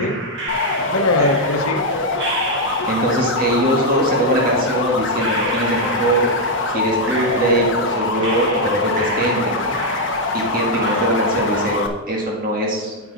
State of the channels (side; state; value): both; normal; correlation 0.00